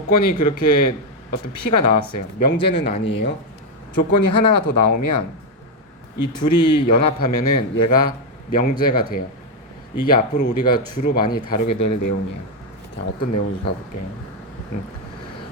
그렇게 어떤 P가 나왔어요. 명제는 아니에요. 조건이 하나가 더 나오면 이 둘이 연합하면은 얘가 명제가 돼요. 이게 앞으로 우리가 주로 많이 다루게 될 내용이에요. 자, 어떤 내용인지 가볼게요.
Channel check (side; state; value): both; normal; correlation 0.04